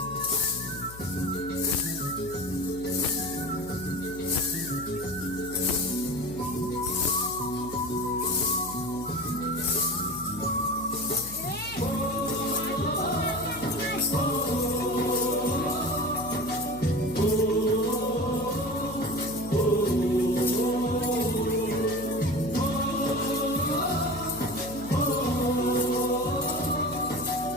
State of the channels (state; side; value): noise; left; hum, 15 dB below the sound